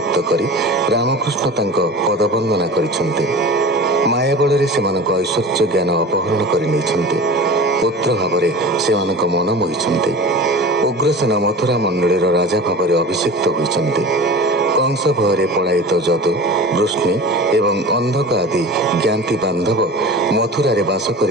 କରି ରାମକୃଷ୍ଣ ତାଙ୍କ ପଦବନ୍ଦନା କରିଛନ୍ତି। ମାୟା ବଳରେ ସେମାନଙ୍କ ଐଶ୍ୱର୍ଯ୍ୟ ଜ୍ଞାନ ଅପହରଣ କରି ନେଇଛନ୍ତି। ପୁତ୍ର ଭାବରେ ସେମାନଙ୍କ ମନ ମୋହିଛନ୍ତି। ଉଗ୍ରସେନ ମଥୁରା ମଣ୍ଡଳୀର ରାଜା ଭାବରେ ଅଭିଷିକ୍ତ ହୋଇଛନ୍ତି। କଂସ ଭୟରେ ପଳାୟିତ ଯଦୁ, ବୃଷ୍ଣି ଏବଂ ଅନ୍ଧକ ଆଦି ଜ୍ଞାତି ବାନ୍ଧବ ମଥୁରାରେ ବାସ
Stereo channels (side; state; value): both; normal; correlation 0.35